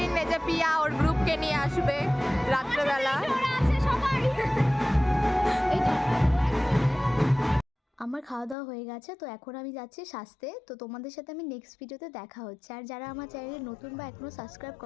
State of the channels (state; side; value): drops out; right; at 8.6 s